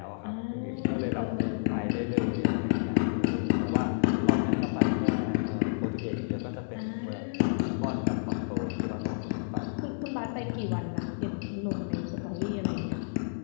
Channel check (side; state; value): right; silent; digital silence